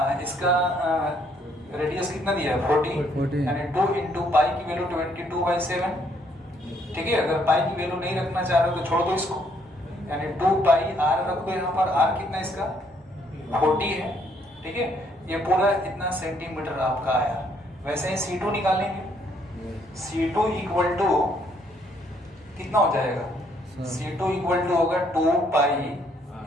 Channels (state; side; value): normal; both; correlation 0.68